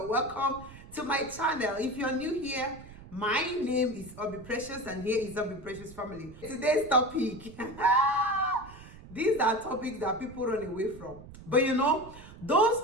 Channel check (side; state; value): right; noise; rumble, 17 dB below the sound